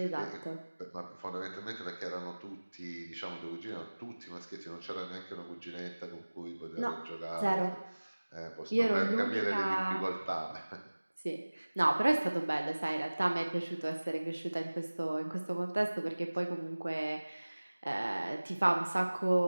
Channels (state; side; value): inverted; both; correlation -1.00